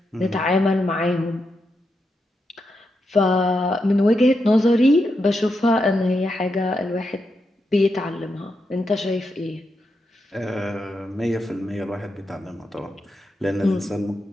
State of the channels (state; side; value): normal; both; correlation 0.85